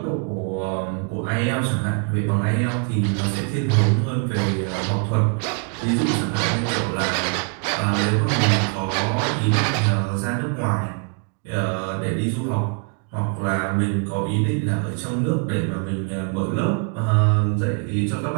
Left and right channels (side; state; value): left; quieter; 35.9 dB